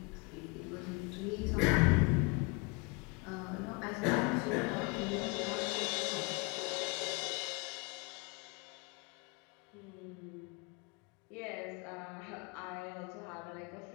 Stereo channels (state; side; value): quieter; right; 29.2 dB